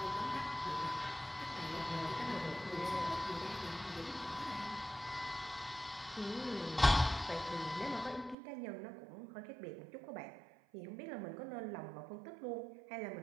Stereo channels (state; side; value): drops out; left; at 8.3 s